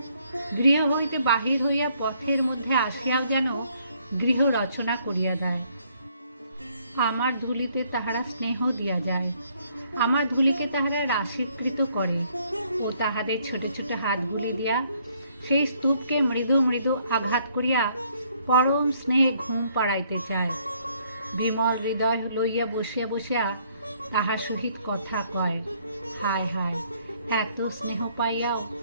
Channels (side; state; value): both; inverted; correlation -0.67